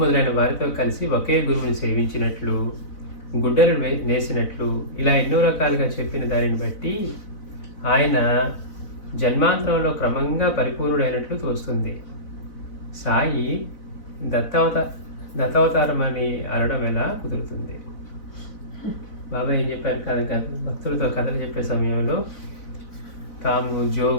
మొదలైన వారితో కలిసి ఒకే గురువుని సేవించినట్లు, గుడ్డలు నేసినట్లు, ఇలా ఎన్నో రకాలుగా చెప్పిన దానిని బట్టి ఆయన జన్మాంతరంలో క్రమంగా పరిపూర్ణుడైనట్లు తోస్తుంది. సాయి దత్తావతారం అని అనడం ఎలా కుదురుతుంది? బాబా ఏం చెప్పారు కదా, భక్తులతో కథలు చెప్పే సమయంలో తాము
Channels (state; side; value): late; right; 4.0 ms